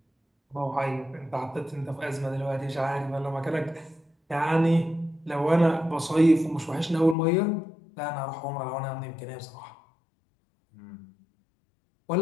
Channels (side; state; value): right; drops out; at 7.2 s